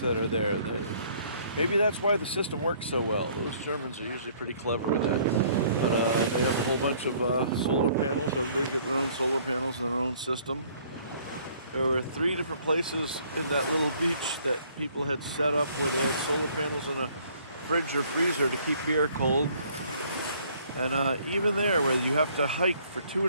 are there. Maybe that's why the system works so well. Those Germans are usually pretty clever with that. But they have a whole bunch of solar panels. Everybody's got their own solar panels and their own system. There were 3 different places in that little beach that people had set up where they had solar panels and a fridge or freezer to keep beer cold. And even there, where you have to hike for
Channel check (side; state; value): both; inverted; correlation -0.60